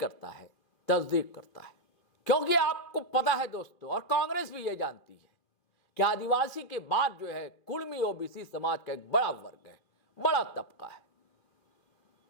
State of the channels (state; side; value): late; right; 2.5 ms